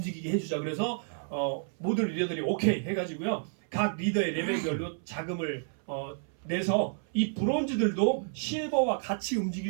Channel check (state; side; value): silent; left; 56 dB below the other